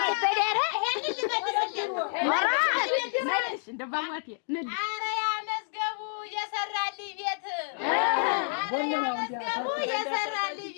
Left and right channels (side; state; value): right; silent; digital silence